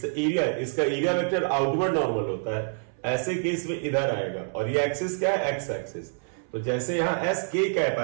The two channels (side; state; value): left; silent; 60 dB below the other